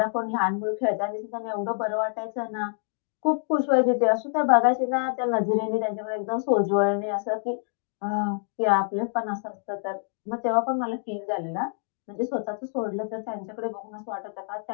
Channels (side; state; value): right; silent; digital silence